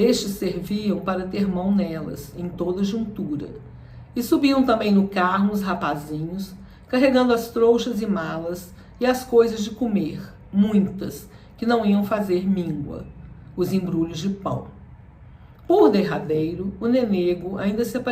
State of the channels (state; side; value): identical; both; correlation 1.00